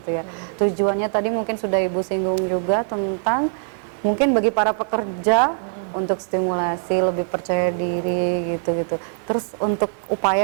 ya. Tujuannya tadi mungkin sudah Ibu singgung juga tentang mungkin bagi para pekerja untuk stimulasi, lebih percaya diri gitu-gitu. Terus untuk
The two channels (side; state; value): left; silent; digital silence